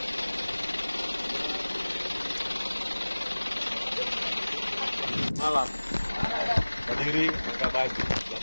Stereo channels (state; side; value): inverted; both; correlation -1.00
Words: Malam. Berdiri, buka baju.